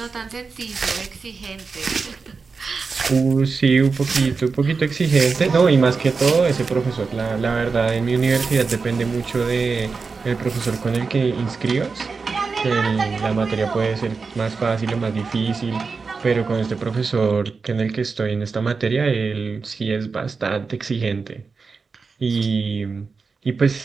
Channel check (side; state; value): left; quieter; 4.7 dB